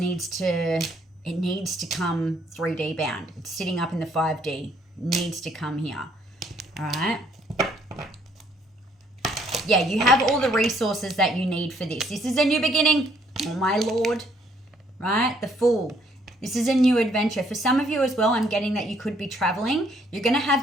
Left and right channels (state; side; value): normal; both; correlation 0.67